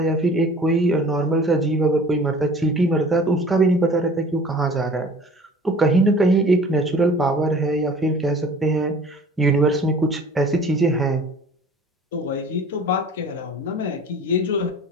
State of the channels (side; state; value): both; normal; correlation 0.46